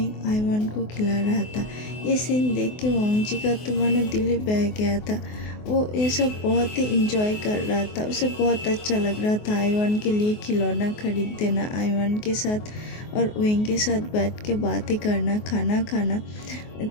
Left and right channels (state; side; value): late; right; 24 ms